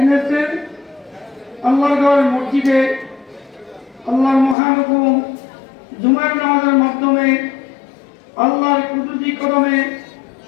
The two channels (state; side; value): drops out; right; at 4.5 s